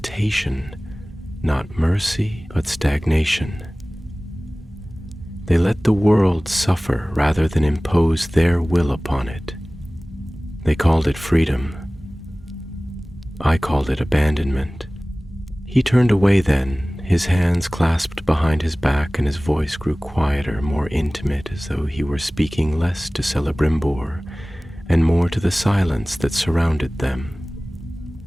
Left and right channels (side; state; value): both; normal; correlation 0.98